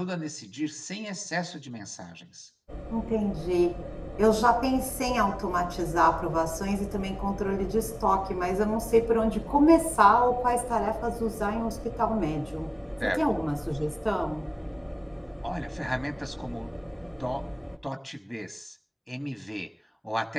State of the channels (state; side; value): identical; both; correlation 1.00